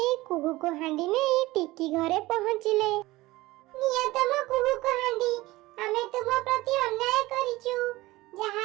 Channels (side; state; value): left; quieter; 19.2 dB